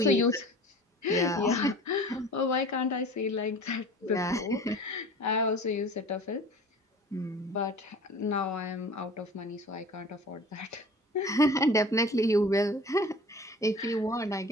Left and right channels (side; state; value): both; normal; correlation 0.42